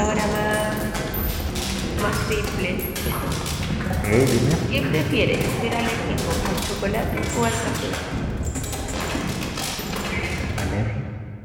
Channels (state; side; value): identical; both; correlation 1.00